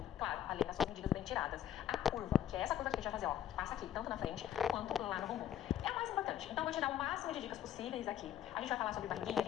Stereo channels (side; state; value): right; quieter; 10.7 dB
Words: Claro, além das suas medidas bem tiradas. A curva, que é essa curva que a gente vai fazer, ó, que passa aqui, tanto na frente quanto lá no bumbum. É o mais importante. Então, eu vou te dar o máximo de dicas possíveis aqui. A gente vai falar sobre barriguinha, a